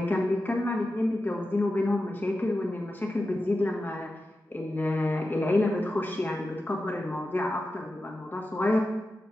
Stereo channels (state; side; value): normal; both; correlation 0.92